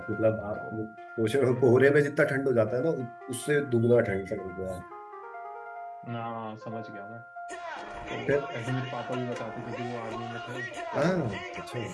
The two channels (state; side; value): identical; both; correlation 1.00